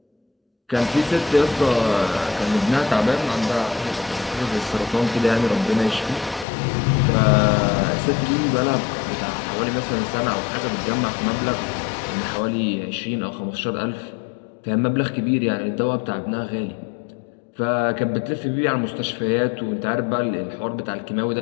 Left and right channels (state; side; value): drops out; right; at 6.5 s